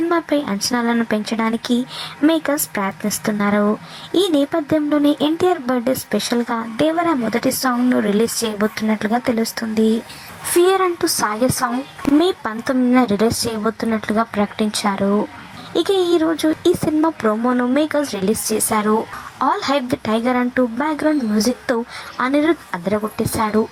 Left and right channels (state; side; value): identical; both; correlation 1.00